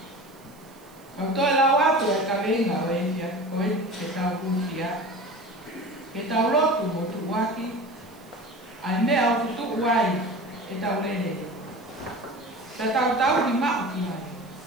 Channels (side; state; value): right; noise; hiss, 29 dB below the sound